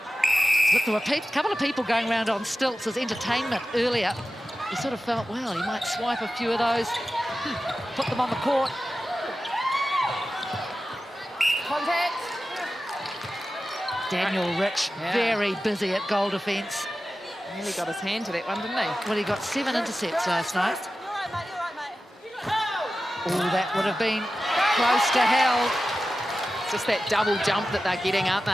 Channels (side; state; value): both; normal; correlation 0.94